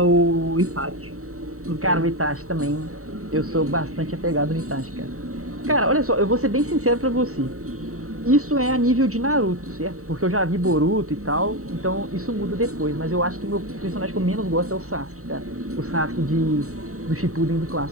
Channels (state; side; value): late; left; 0.64 ms